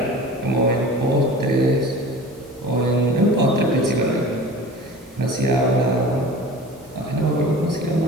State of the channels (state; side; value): normal; both; correlation 0.38